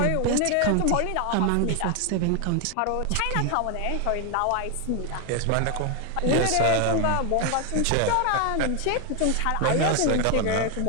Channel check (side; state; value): both; different; correlation 0.01